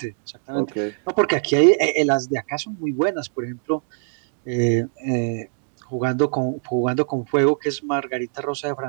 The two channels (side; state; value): left; silent; digital silence